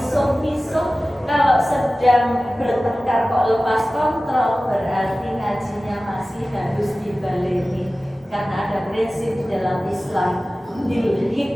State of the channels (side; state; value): both; normal; correlation 0.96